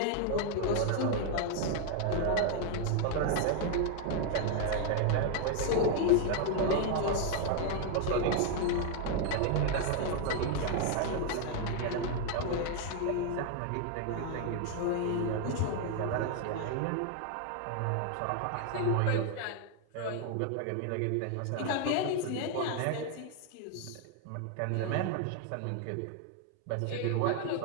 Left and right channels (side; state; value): both; different; correlation 0.00